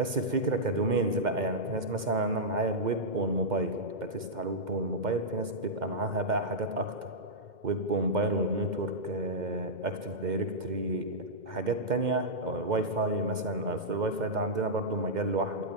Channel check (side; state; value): left; late; 2.1 ms